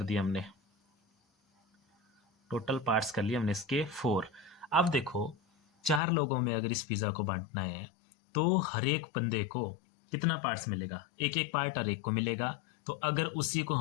दिए हमने, टोटल पार्ट्स कर लिए हमने इसके 4। अब देखो, 4 लोगों में अगर इस पिज़्ज़ा को बांटना है तो हर एक बंदे को कितना पार्ट्स मिलेगा, एक एक पार्ट हर एक को मिलेगा। तो अगर उसी को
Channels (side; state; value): right; drops out; at 6.0 s